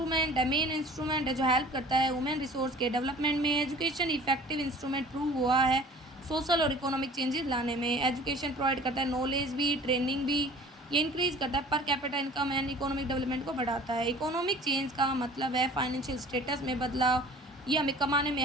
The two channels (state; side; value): normal; both; correlation 0.46